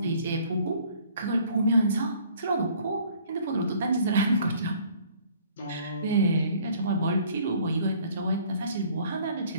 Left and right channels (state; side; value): inverted; both; correlation -0.57